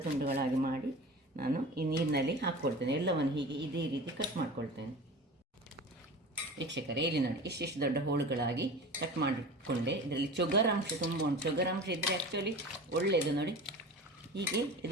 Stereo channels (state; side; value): normal; both; correlation 0.35